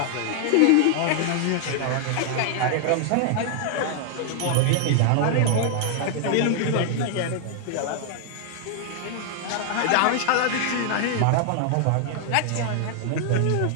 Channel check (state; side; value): different; both; correlation 0.00